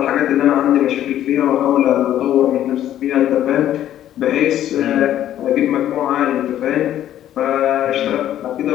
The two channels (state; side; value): quieter; right; 11.8 dB